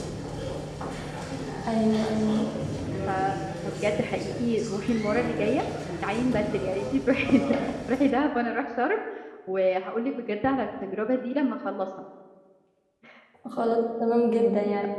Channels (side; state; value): both; identical; correlation 1.00